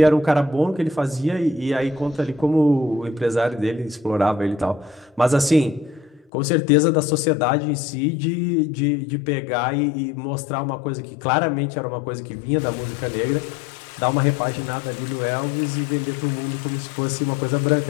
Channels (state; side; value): drops out; right; at 6.2 s